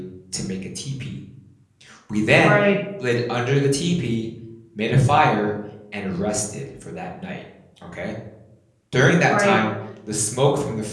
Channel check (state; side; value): identical; both; correlation 1.00